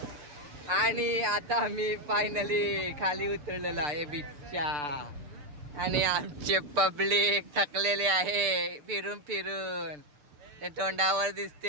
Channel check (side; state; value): left; late; 6.8 ms